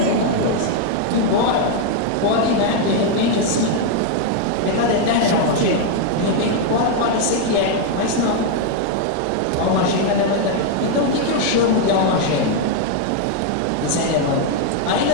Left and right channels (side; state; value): both; different; correlation 0.00